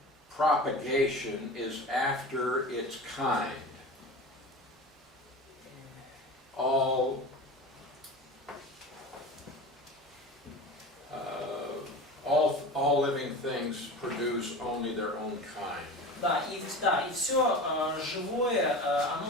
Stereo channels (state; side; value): normal; both; correlation 0.32